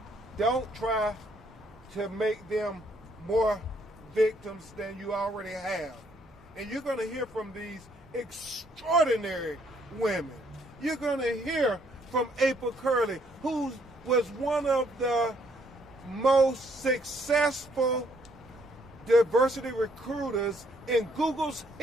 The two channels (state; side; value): normal; both; correlation 0.68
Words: Don't try to make them more victims than you already have. And you're going to hear from these extraordinary women. You're going to hear from April Curley, who was one of the most successful diversity recruiters in Google's